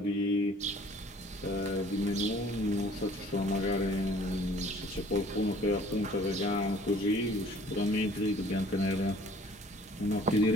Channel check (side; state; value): both; normal; correlation 0.54